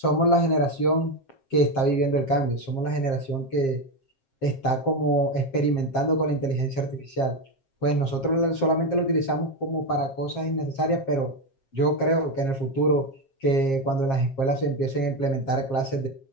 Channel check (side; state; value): right; late; 7.5 ms